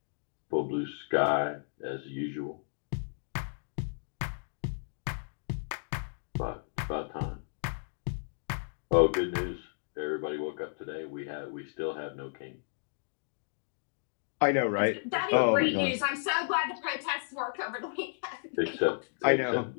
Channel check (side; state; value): right; silent; digital silence